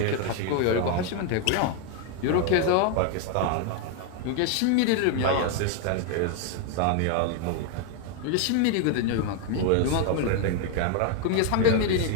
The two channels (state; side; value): different; both; correlation 0.00